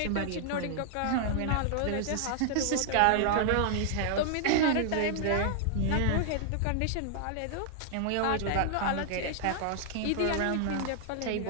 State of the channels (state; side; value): different; both; correlation -0.01